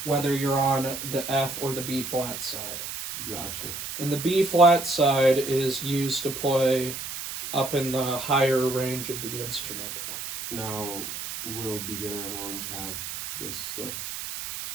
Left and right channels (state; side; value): noise; right; hiss, 7 dB below the sound